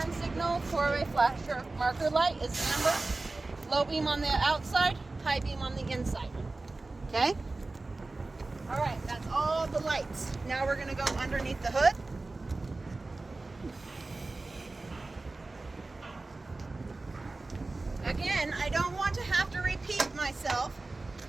signal, four-way flasher, marker light is amber. Low beam on the outside, high beam on the inside. Okay? All right, that's all the lights. Now we're gonna go underneath the hood. Again, I don't want to have to repeat myself,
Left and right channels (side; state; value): left; quieter; 3.3 dB